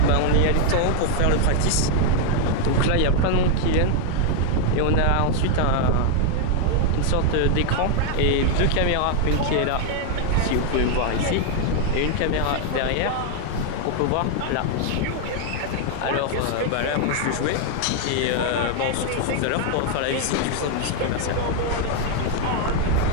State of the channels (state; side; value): different; both; correlation 0.00